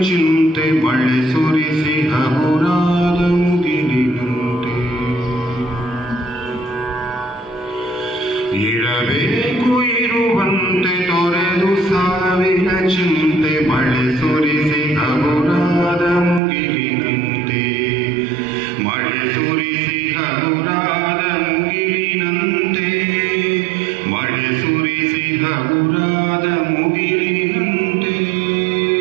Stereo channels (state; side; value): drops out; left; at 16.4 s